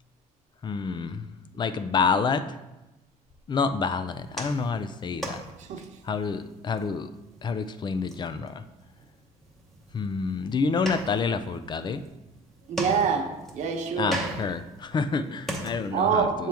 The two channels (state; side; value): normal; both; correlation 0.40